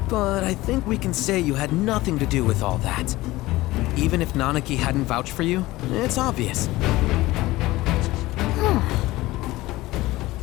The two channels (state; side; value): quieter; right; 18.5 dB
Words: But I think we can say you had nothing to do with all that. Even if Nanaki hadn't vouched for you, it's obvious.